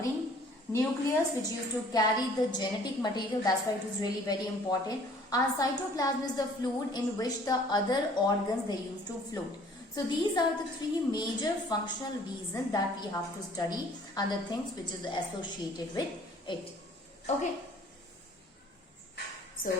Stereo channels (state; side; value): normal; both; correlation 0.55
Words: nucleus which used to carry the genetic material, that's why it is really very important, and cytoplasm is the fluid in which the other organs they used to float. So these are the three major functional reasons that we have to study and the things which is associated with it. Okay.